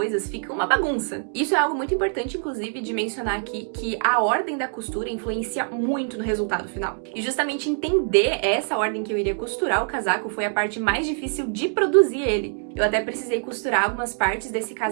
fica uma bagunça. Isso é algo muito importante, inclusive, de mencionar aqui, que a ordem da costura influencia muito no resultado final. E justamente entender essa ordem que eu iria costurar o casaco foi a parte mais difícil de produzir ele. Eu até precisei costurar algumas partes desse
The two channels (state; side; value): silent; left; digital silence